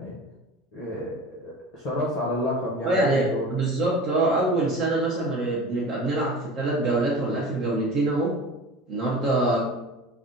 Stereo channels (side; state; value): both; normal; correlation 0.36